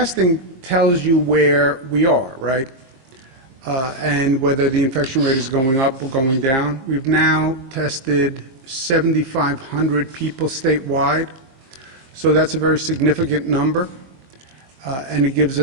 tells you where we are, right? And whether the infection rate is going up or going down. We've now tested 7,500 people statewide, so that's a very significant number, and it gives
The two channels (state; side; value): late; left; 22 ms